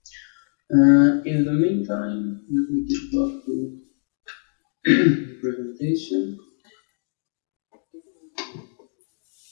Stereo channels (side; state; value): right; silent; digital silence